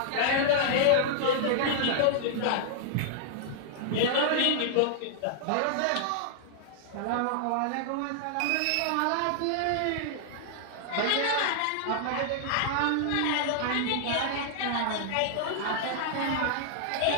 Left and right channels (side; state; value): both; different; correlation -0.01